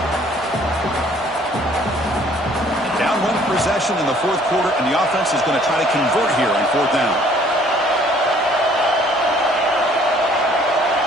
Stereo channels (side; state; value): both; normal; correlation 0.58